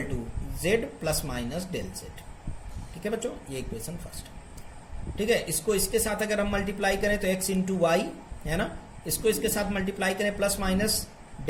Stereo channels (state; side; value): identical; both; correlation 1.00